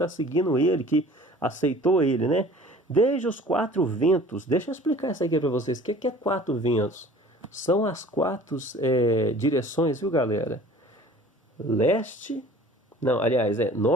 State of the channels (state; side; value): normal; both; correlation 0.47